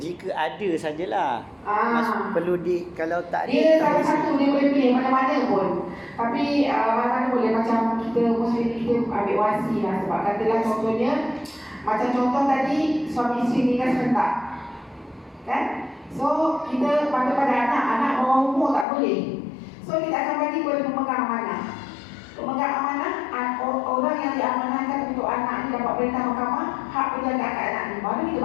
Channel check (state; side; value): drops out; right; at 18.9 s